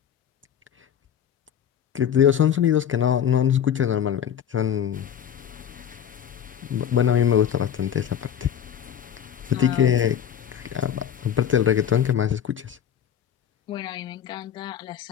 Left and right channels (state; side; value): quieter; right; 9.2 dB